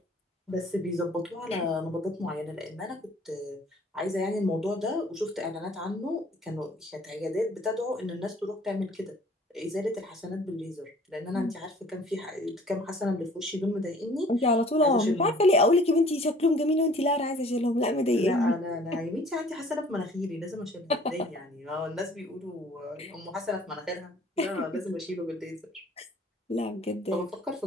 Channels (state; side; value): normal; both; correlation 0.53